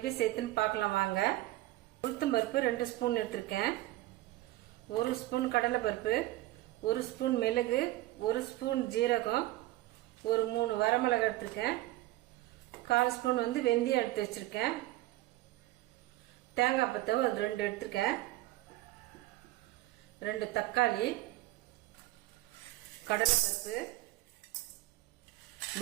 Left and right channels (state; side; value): quieter; left; 17.2 dB